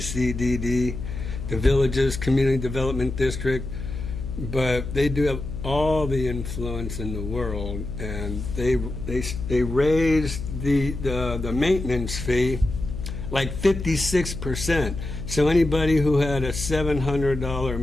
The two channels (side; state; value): left; noise; hum, 7 dB below the sound